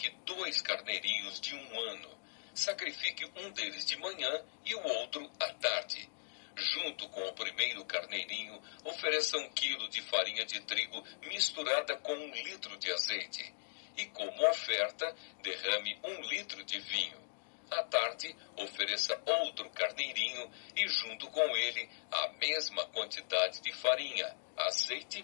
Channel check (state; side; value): silent; right; digital silence